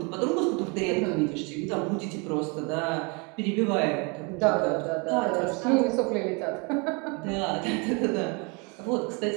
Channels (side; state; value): left; quieter; 31.5 dB